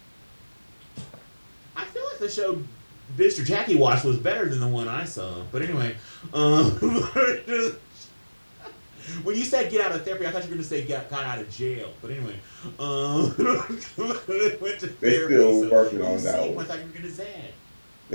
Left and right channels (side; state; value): both; inverted; correlation -1.00